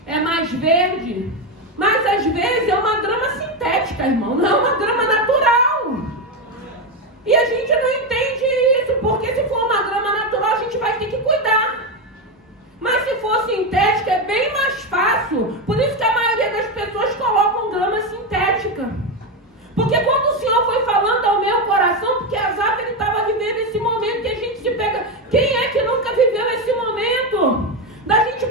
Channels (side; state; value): both; normal; correlation 0.11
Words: é mais verde, mas às vezes é uma grama sintética, irmão, não é uma grama natural. E a gente não entende isso, porque se for uma grama natural a gente vai ter que cuidar. Mas se for sintética é bem mais fácil. Por isso que a maioria das pessoas colocam grama sintética. Porque quando o Senhor foi falando ao meu coração, porque Asaf ele estava vivendo esse momento que a gente se pega. Quem é que nunca viveu esse momento? Da gente